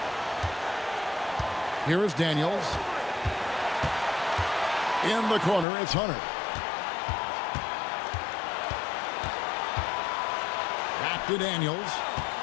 Here is Daniels. In the corner, it's Hunter. Back to Daniels.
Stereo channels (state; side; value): drops out; right; at 5.7 s